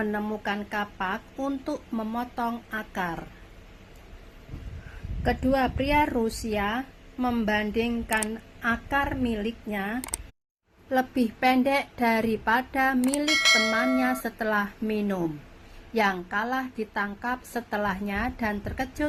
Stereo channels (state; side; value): identical; both; correlation 1.00